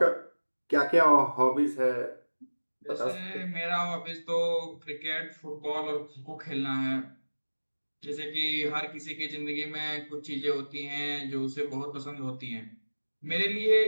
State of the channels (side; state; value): both; inverted; correlation -1.00